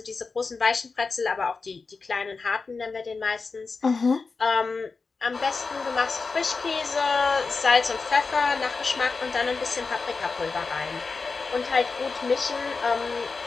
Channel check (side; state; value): right; quieter; 4.4 dB